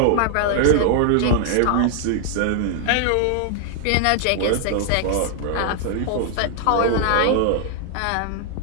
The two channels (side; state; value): both; different; correlation 0.00